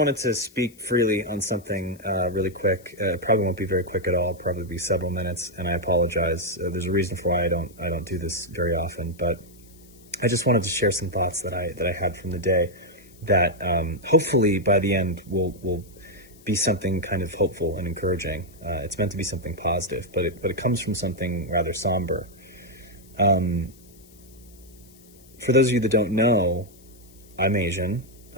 to speak freely on something really quick. Probably won't be very quick at all. Probably be several minutes, and I apologize. There's a reason for why I don't do this very often, but I just wanted to share some thoughts that I had from the day that hopefully by the end will be something kind of hopeful and encouraging. It's meant to be something positive, but it comes from something rather somber. For those of you that don't know, I'm Asian.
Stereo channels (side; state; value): left; noise; hiss, 26 dB below the sound